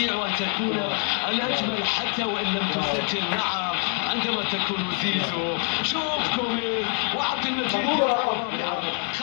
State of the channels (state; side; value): quieter; right; 38.2 dB